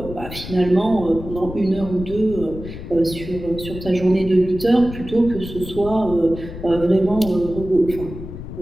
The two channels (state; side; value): noise; left; rumble, 11 dB below the sound